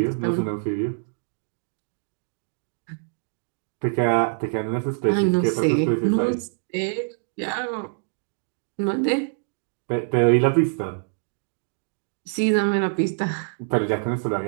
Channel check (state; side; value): silent; left; digital silence